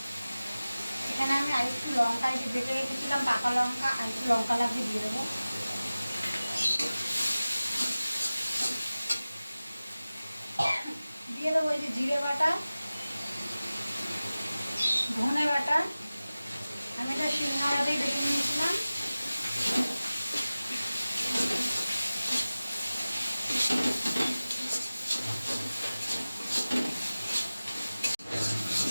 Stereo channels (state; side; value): inverted; both; correlation -0.97